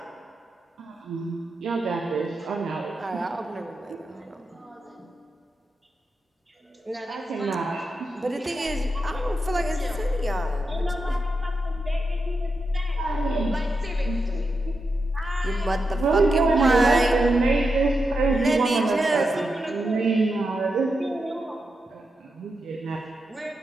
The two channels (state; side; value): normal; both; correlation 0.87